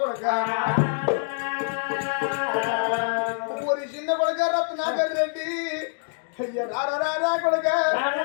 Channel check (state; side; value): silent; right; digital silence